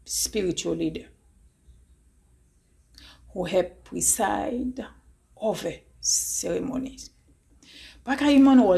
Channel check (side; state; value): both; identical; correlation 1.00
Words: spiritual leader who helped preside over ceremonies. But Kayiman